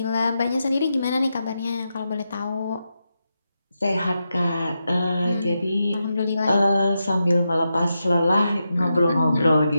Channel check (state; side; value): inverted; both; correlation -0.87